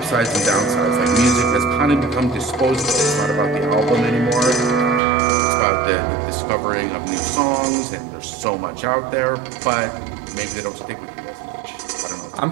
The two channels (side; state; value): left; drops out; at 5.0 s